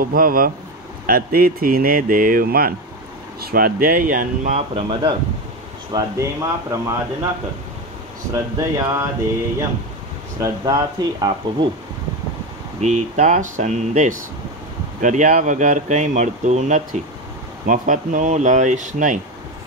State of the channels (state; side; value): normal; both; correlation 0.17